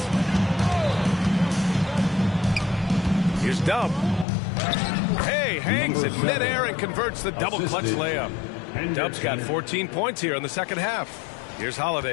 Here's Dub. Hey, hangs it midair and converts the double clutch layup. Dub's got 14 points here in the second half. Here's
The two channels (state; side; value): drops out; right; at 4.2 s